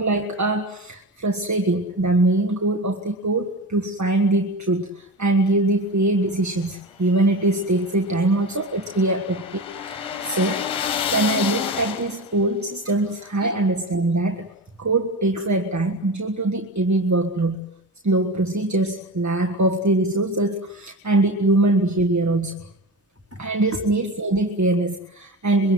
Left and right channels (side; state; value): both; normal; correlation 0.27